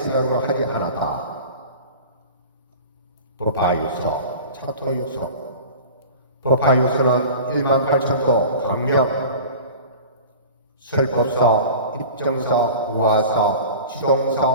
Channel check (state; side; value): inverted; both; correlation -0.38